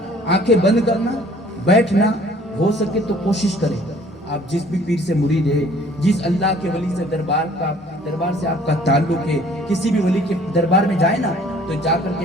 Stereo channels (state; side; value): normal; both; correlation 0.55